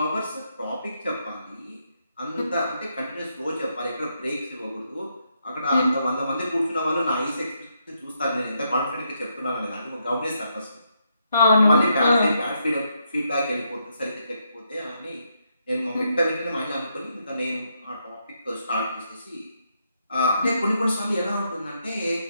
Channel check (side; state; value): both; inverted; correlation -0.78